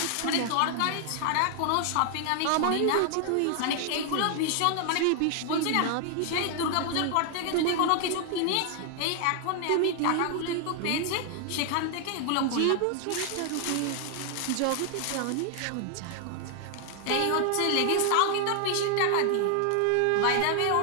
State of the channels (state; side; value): different; both; correlation 0.00